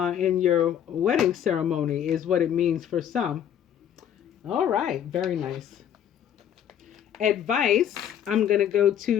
your wedding ceremony is what it means for some. All right, very nice. Advice, I'm going to go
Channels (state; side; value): quieter; right; 9.6 dB